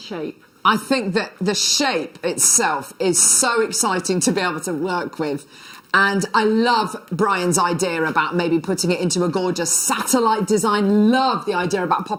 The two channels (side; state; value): both; identical; correlation 1.00